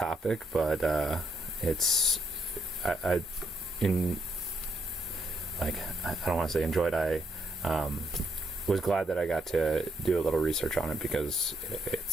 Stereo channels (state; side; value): normal; both; correlation 0.75